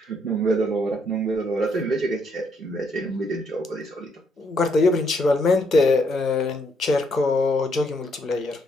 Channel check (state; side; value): normal; both; correlation 0.73